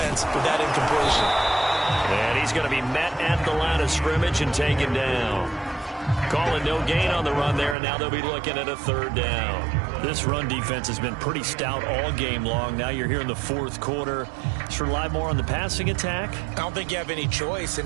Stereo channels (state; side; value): drops out; left; at 7.8 s